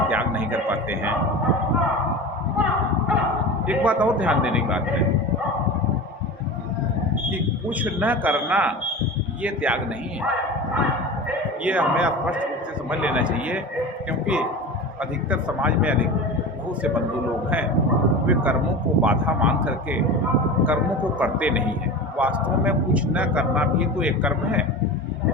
त्याग नहीं कर पाते हैं। एक बात और ध्यान देने की बात है कि कुछ न करना ये त्याग नहीं है, ये हमें स्पष्ट रूप से समझ लेना चाहिए, क्योंकि अधिकतर समाज में बहुत से बंधु लोग हैं, वे कर्मों को बाधा मान करके कर्मों को करते नहीं हैं। वास्तव में कुछ न करना भी तो एक कर्म है।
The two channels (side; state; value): both; normal; correlation 0.30